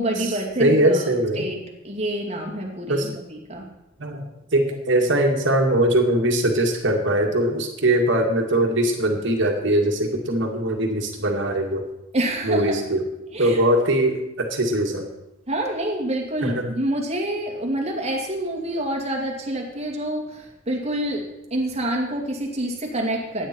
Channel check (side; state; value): both; normal; correlation 0.22